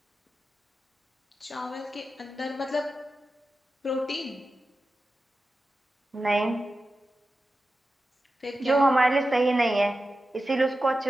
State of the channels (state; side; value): normal; both; correlation 0.92